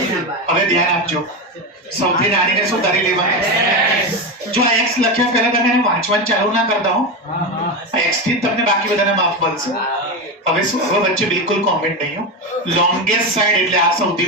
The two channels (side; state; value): both; normal; correlation 0.16